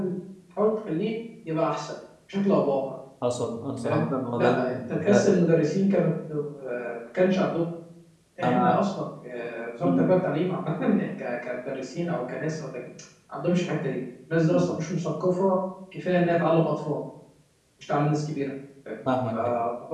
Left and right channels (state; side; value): identical; both; correlation 1.00